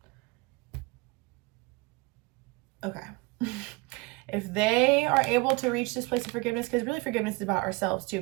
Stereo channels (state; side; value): quieter; left; 25.7 dB